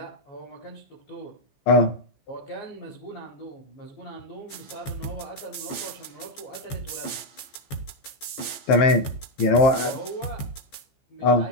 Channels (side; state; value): right; late; 15 ms